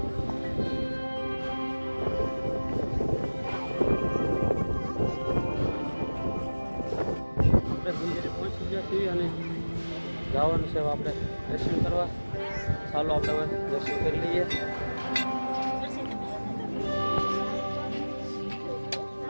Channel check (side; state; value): both; inverted; correlation -1.00